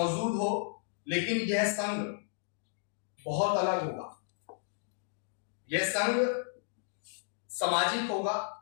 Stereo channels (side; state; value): right; silent; digital silence